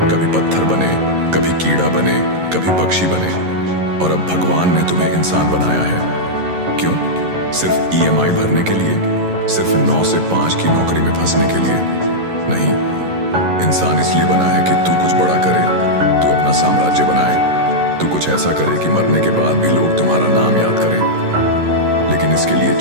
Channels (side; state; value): left; late; 11 ms